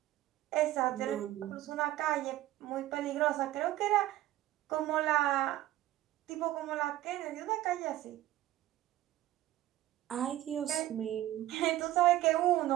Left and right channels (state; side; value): quieter; left; 14.9 dB